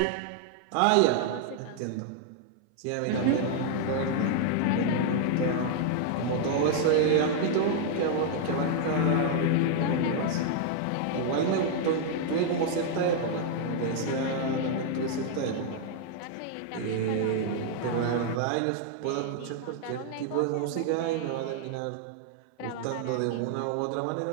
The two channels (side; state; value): both; different; correlation 0.00